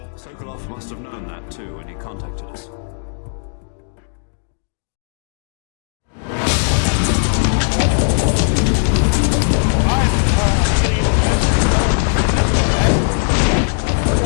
Sokolov must have known that too when he contacted us.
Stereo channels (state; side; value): silent; right; digital silence